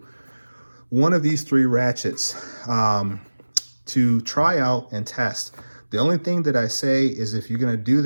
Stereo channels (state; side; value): inverted; both; correlation -1.00